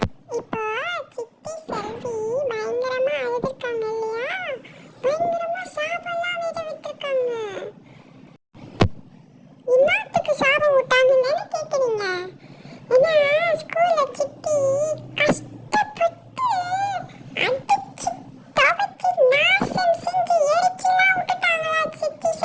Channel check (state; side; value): identical; both; correlation 1.00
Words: இப்போ சித்தி செல்வி பயங்கரமா அழுதுருக்காங்க இல்லையா? பயங்கரமா சாபம்லாம் வேற விட்டுருக்காங்க. இன்னத்துக்கு சாபம் விட்டாங்கன்னு கேக்குறீங்க? ஏன்னா ஸ்கூல்ல சித்தி கஷ்டப்பட்டு அடிச்சு துவைச்சு நாசம் செஞ்சு எரிச்சுலாம் விட்டுட்டாங்களா சித்தி